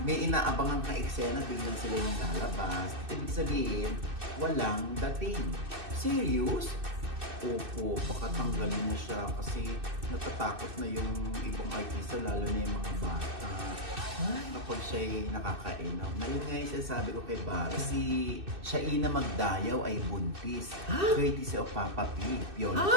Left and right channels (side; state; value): left; late; 2.6 ms